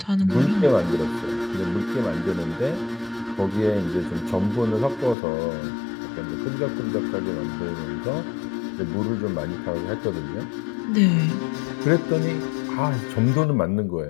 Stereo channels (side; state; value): right; drops out; at 5.2 s